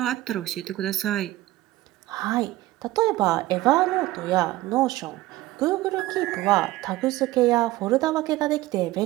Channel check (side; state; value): left; quieter; 17.1 dB